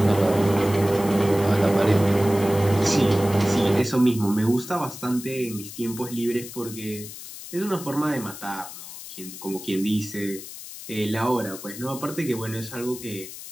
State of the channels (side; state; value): left; noise; hiss, 13 dB below the sound